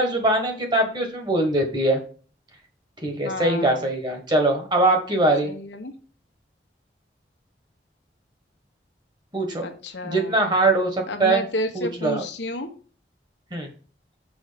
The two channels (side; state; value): both; normal; correlation 0.27